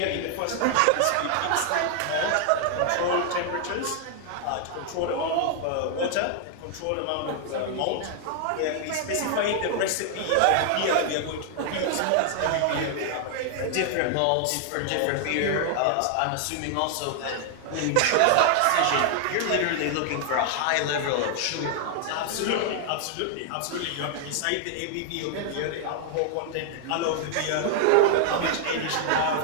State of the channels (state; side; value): different; both; correlation 0.00